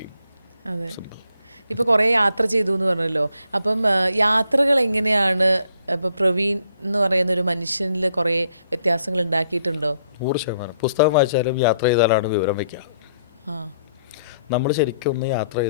അതെ. ഇപ്പോൾ കുറേ യാത്ര ചെയ്തു എന്ന് പറഞ്ഞല്ലോ. അപ്പം യാത്രകൾ എങ്ങനെയാണ് ഇപ്പോൾ പ്രവീൺ എന്ന് പറയുന്ന ഒരു മനുഷ്യനിൽ കുറേ വ്യത്യാസങ്ങൾ ഉണ്ടാക്കിയിട്ടുണ്ടോ? 100%. പുസ്തകം വായിച്ചാലും യാത്ര ചെയ്താലാണ് വിവരം വയ്ക്കുക. നമ്മൾ ശരിക്കും ഒന്ന് യാത്ര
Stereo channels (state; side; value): inverted; both; correlation -0.70